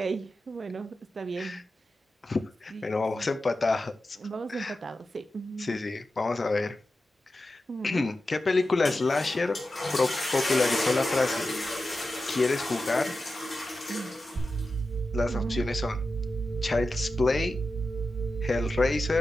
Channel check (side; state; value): both; normal; correlation 0.92